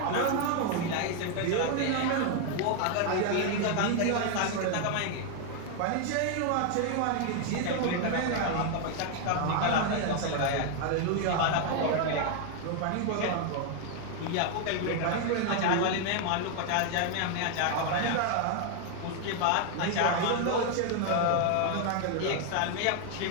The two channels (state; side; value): different; both; correlation 0.01